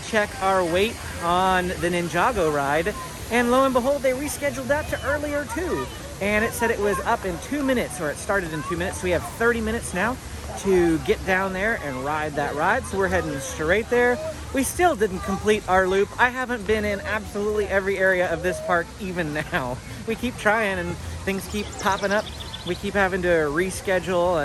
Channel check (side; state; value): both; identical; correlation 1.00